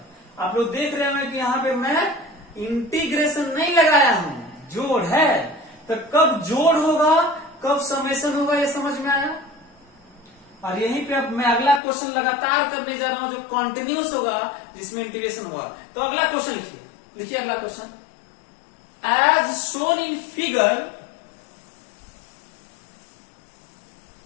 आप लोग देख रहे हैं कि यहाँ पे मैं इंटीग्रेशन नहीं लगाया हूं, जोड़ है। तो कब जोड़ होगा, कब समेशन होगा, ये समझ में आया? और यहीं पे अब मैं अगला क्वेश्चन लगातार करने जा रहा हूं जो कॉन्टिन्यूस होगा, जिसमें इंटीग्रेशन होगा। तो अगला क्वेश्चन लिखिए अगला question. As shown in figure,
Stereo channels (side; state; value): right; drops out; at 11.8 s